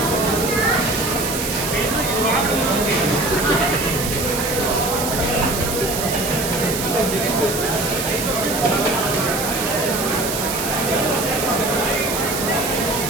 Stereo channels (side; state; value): right; noise; hiss, 4 dB below the sound